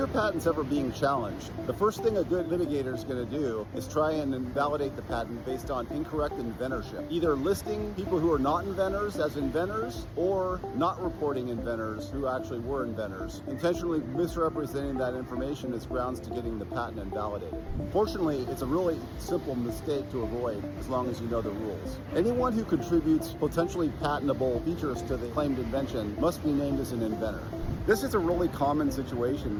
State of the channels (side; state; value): both; identical; correlation 1.00